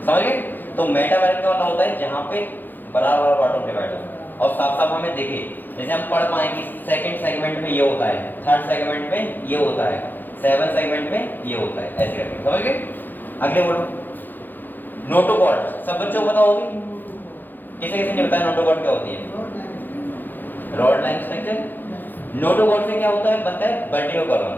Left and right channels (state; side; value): late; right; 0.089 ms